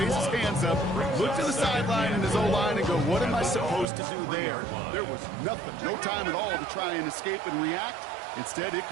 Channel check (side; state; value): left; drops out; at 3.9 s